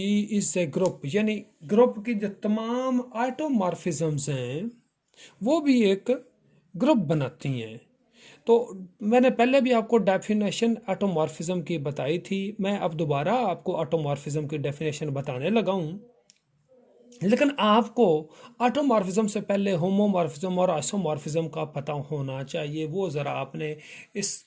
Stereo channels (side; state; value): both; identical; correlation 1.00